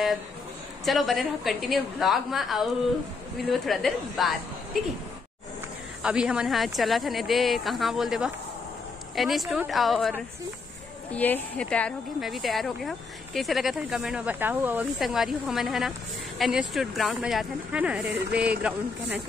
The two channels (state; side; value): quieter; right; 4.4 dB